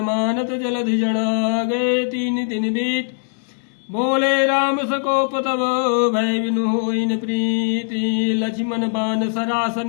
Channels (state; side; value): silent; right; digital silence